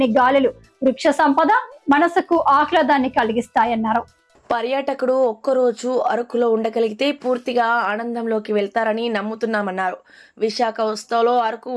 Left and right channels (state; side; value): identical; both; correlation 1.00